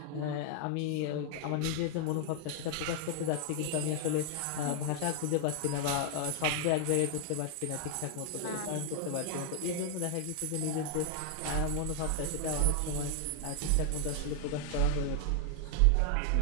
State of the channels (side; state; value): both; different; correlation 0.00